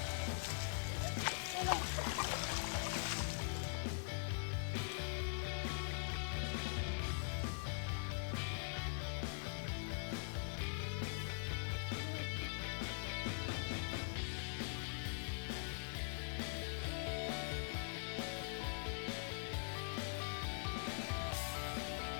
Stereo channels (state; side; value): silent; right; digital silence